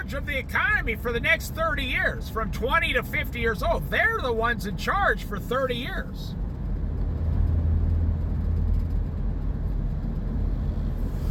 of the economy for the next 30 years, from 20 to 50 years old. They're the ones in charge for 30 years.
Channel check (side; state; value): both; identical; correlation 1.00